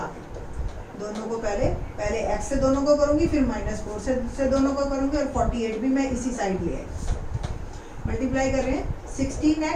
के दोनों को पहले x से दोनों को करूंगी, फिर -4 से दोनों को करूंगी, और 48 भी मैं इसी साइड ले आई। मल्टीप्लाई कर रहे हैं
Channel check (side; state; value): both; identical; correlation 1.00